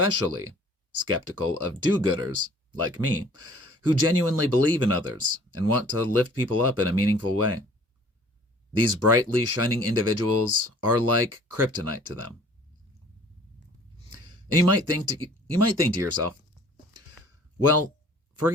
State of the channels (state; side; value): normal; both; correlation 0.52